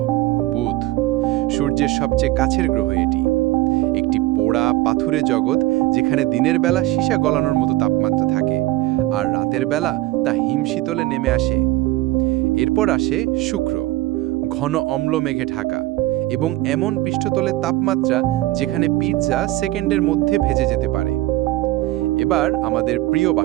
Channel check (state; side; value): quieter; left; 17.2 dB